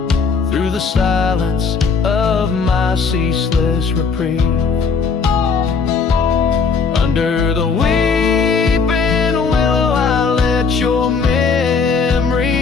through the silence of my ceaseless reprieve. Under the weeping willow I let your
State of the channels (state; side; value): quieter; right; 5.1 dB